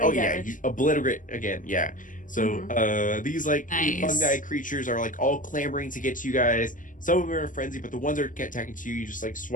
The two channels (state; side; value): late; right; 0.38 ms